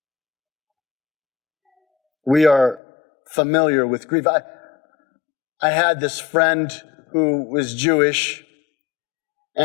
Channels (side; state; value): right; drops out; at 2.8 s